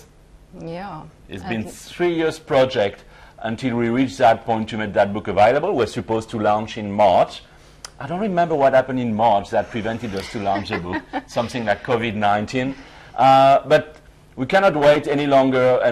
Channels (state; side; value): identical; both; correlation 1.00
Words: Yeah. It's been 3 years project until we reached that point to make that book available. We're supposed to launch in March. I don't remember what happened in March that prevented us to launch the book, something like COVID-19. But we cannot wait any longer,